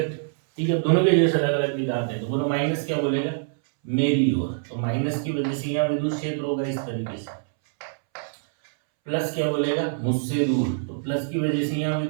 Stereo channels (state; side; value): silent; left; 62 dB below the other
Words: ठीक है। दोनों के जैसे अलग अलग निकालते हैं। तो बोलो माइनस क्या बोलेगा, मेरी ओर, तो माइनस की वजह से यहाँ विद्युत क्षेत्र होगा इस तरीके से। प्लस क्या बोलेगा, मुझसे दूर, तो प्लस की वजह से यहाँ